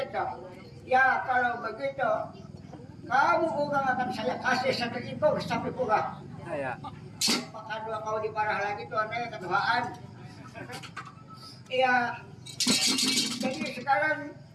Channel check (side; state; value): both; identical; correlation 1.00